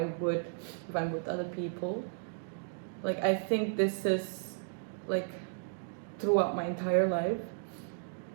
would if I'm with other people. Like, I think this is, like, throughout my entire life,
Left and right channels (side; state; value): left; silent; digital silence